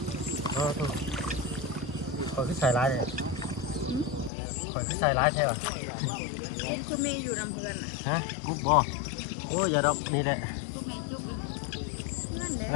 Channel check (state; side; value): drops out; right; at 4.3 s